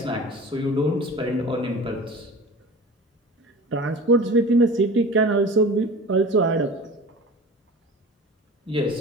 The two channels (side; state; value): both; normal; correlation 0.37